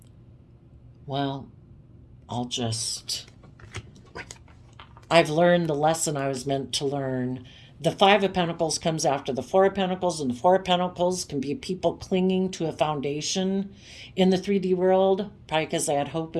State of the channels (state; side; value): identical; both; correlation 1.00